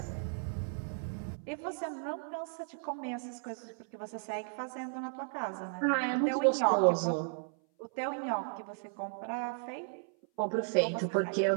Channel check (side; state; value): left; silent; 55 dB below the other